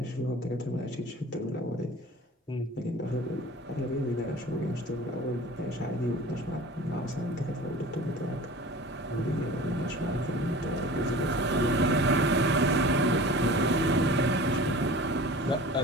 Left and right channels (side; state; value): both; normal; correlation 0.41